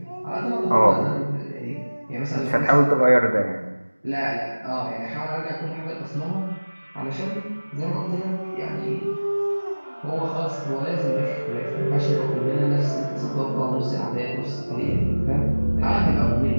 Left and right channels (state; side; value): inverted; both; correlation -1.00